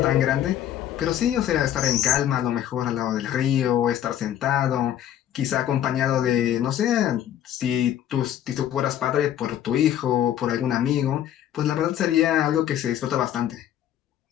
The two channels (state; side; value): quieter; right; 11.1 dB